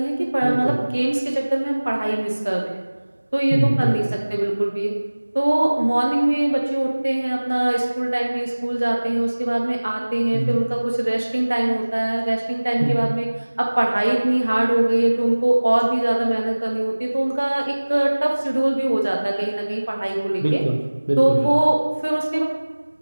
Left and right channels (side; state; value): both; inverted; correlation -1.00